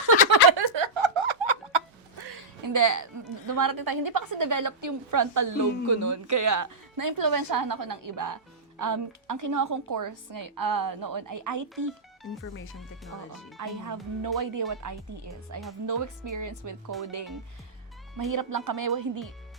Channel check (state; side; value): normal; both; correlation -0.12